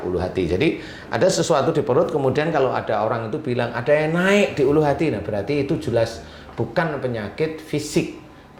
ulu hati. Jadi ada sesuatu di perut, kemudian kalau ada orang itu bilang ada yang naik di ulu hati, nah berarti itu jelas bukan penyakit fisik.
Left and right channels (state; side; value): identical; both; correlation 1.00